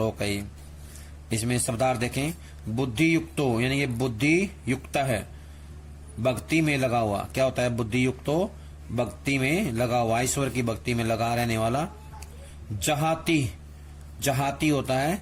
है। इसमें शब्दार्थ देखें। बुद्धि युक्तो यानी ये बुद्धि युक्त है, भक्ति में लगा हुआ। क्या होता है बुद्धि युक्तो? भक्ति में लगा हुआ, ईश्वर की भक्ति में लगा रहने वाला। जहाती होता है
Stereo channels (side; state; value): both; identical; correlation 1.00